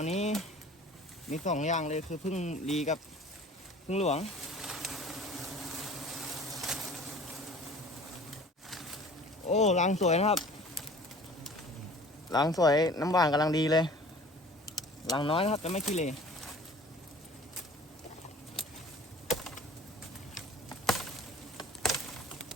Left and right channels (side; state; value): both; normal; correlation 0.46